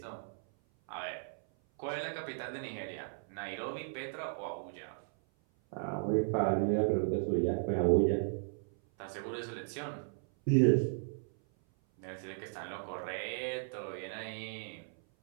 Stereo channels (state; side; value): silent; left; 54 dB below the other